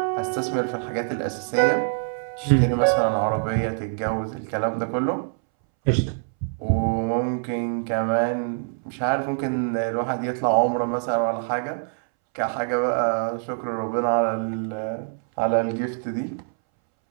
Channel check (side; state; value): left; silent; 62 dB below the other